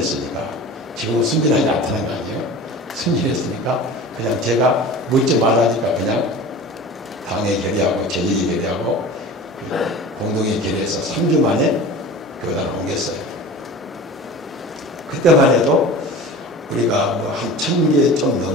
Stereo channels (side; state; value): both; normal; correlation 0.37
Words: 지금은 순진하지 않다는 거 아니에요. 순진했으니까 그냥 제가 묻지 말라니까 그냥 당회 결의하고 재직회 결의하고 공동회 결의해서 3주 만에 교단을 옮겼어요. 그때만 해도 우리가 뭐 한 1000개 좀